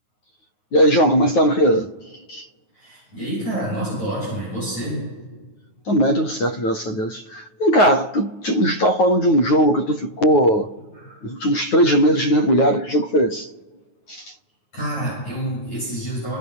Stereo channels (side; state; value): right; late; 9.4 ms